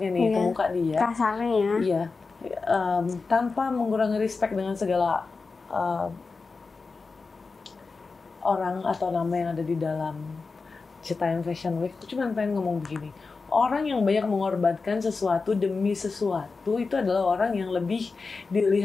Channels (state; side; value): quieter; right; 4.3 dB